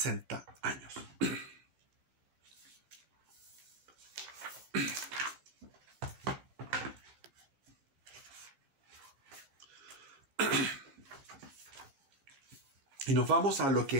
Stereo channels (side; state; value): left; late; 16 ms